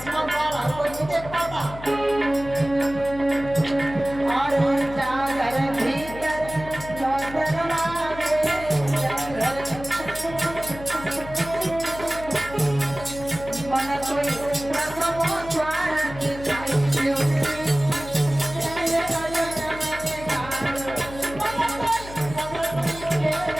द्वार हर कोई नहीं देख पाता।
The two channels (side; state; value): left; noise; hum, 13 dB below the sound